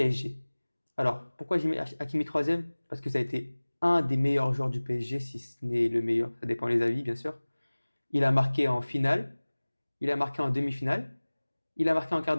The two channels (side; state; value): both; inverted; correlation -1.00